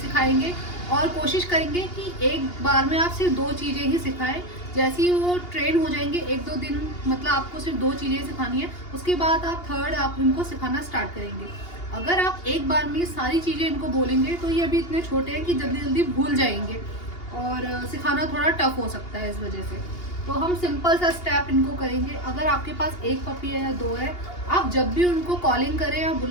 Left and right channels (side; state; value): right; late; 2.8 ms